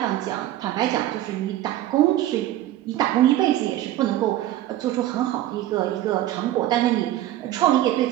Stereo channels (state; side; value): quieter; left; 13.8 dB